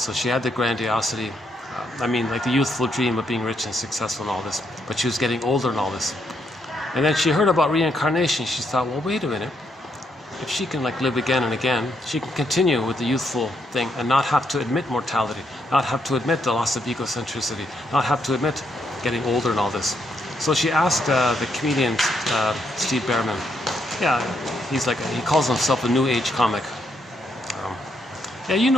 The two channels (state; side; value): normal; both; correlation 0.77